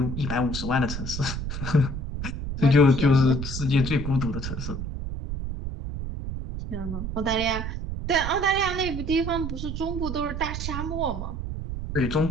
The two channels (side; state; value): right; noise; rumble, 5 dB below the sound